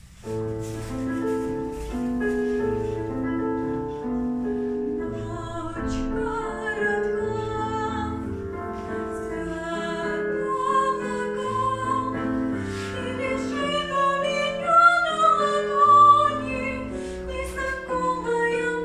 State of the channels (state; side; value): identical; both; correlation 1.00